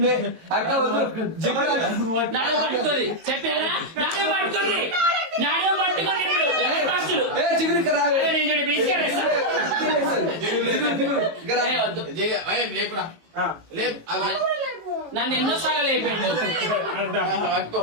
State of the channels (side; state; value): left; late; 18 ms